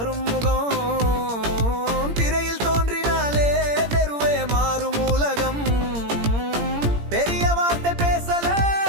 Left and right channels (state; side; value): late; left; 17 ms